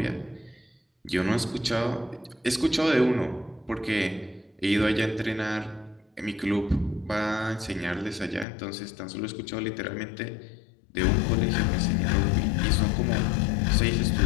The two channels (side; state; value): right; drops out; at 8.5 s